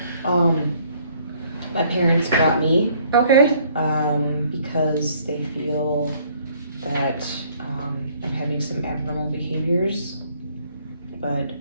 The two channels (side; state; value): both; inverted; correlation -0.62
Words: My parents brought me, Okay. because they feel that, I'm having some abnormal behaviors. But